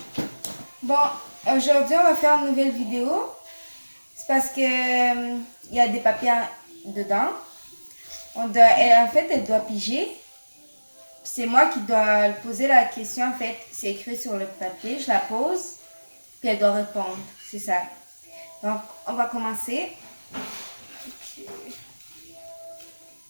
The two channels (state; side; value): inverted; both; correlation -1.00